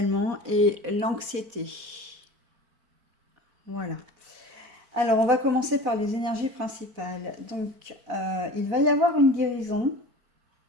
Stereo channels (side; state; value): left; late; 4.5 ms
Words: et l'anxiété. Voilà. Alors, on va commencer par les énergies principales. Donc, il va y avoir une guérison.